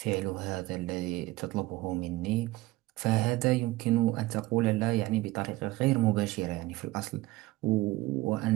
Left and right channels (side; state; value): left; quieter; 18.6 dB